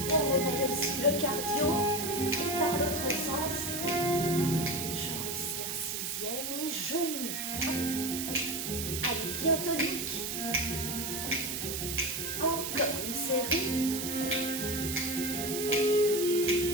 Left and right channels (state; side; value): noise; right; hiss, 3 dB below the sound